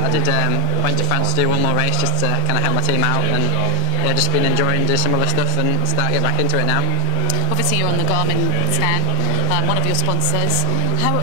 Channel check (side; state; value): both; different; correlation 0.00